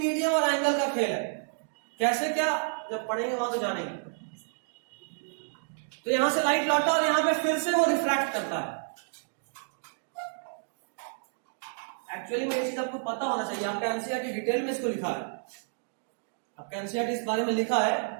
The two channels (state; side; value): silent; left; digital silence